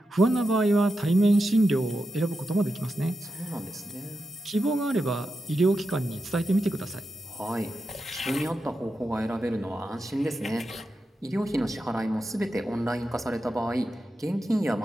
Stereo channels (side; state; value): both; normal; correlation 0.89